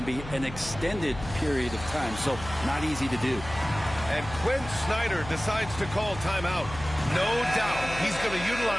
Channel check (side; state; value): left; noise; hum, 12 dB below the sound